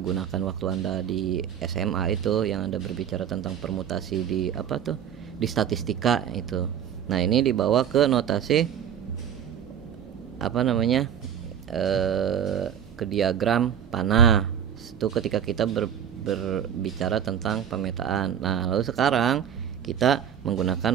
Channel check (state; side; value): quieter; left; 9.0 dB